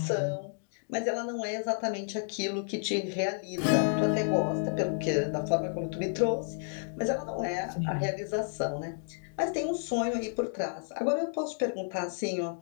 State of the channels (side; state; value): right; silent; digital silence